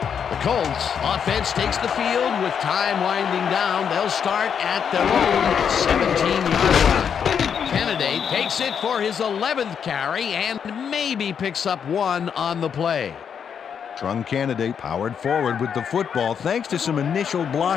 The Colts offense takes the field with time winding down. They'll start at their own 17-yard line. Candidate takes it for his 11th carry and maybe picks up one on the play. Trung Candidate powered forward with the football thanks to some initial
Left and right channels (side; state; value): right; quieter; 7.5 dB